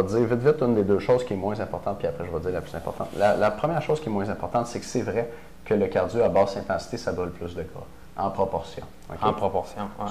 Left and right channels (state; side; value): identical; both; correlation 1.00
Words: te dire vite, vite, une des deux choses qui est moins importante, puis après je vais te dire la plus importante. La première chose qui est moins importante, c'est que c'est vrai que le cardio à basse intensité, ça brûle plus de gras, en proportion. Okay? En proportion, ouais.